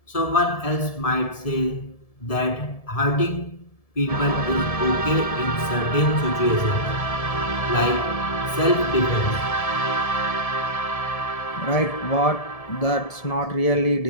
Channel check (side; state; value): right; late; 1.7 ms